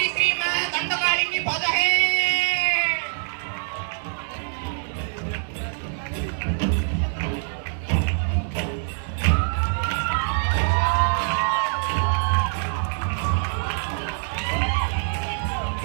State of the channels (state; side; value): silent; left; digital silence